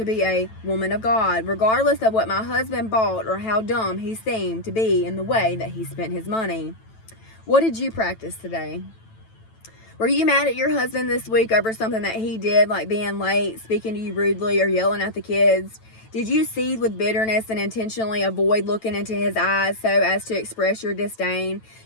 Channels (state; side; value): late; right; 9.1 ms